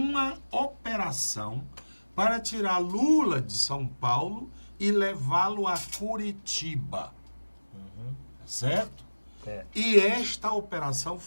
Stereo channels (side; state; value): both; inverted; correlation -1.00